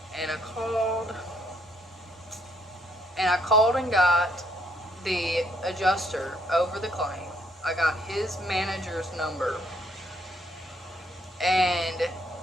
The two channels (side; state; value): both; normal; correlation 0.69